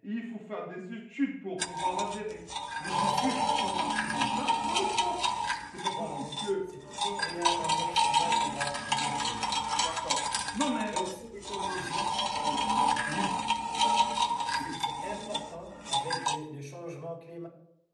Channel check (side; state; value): both; identical; correlation 1.00